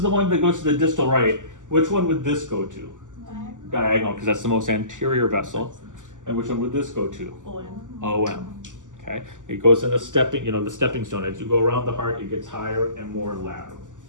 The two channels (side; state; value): left; late; 0.87 ms